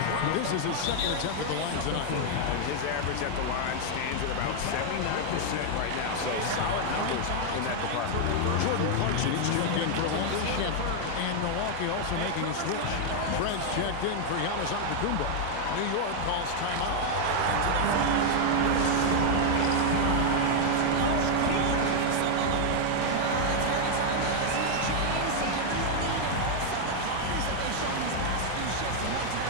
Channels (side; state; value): both; different; correlation 0.00